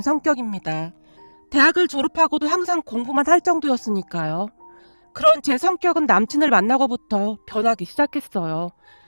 성격입니다. 대학을 졸업하고도 항상 공부만 할 정도였으니까요. 그런 제 성격은 남친을 만나고부터 변하기 시작했어요.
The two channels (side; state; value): both; inverted; correlation -1.00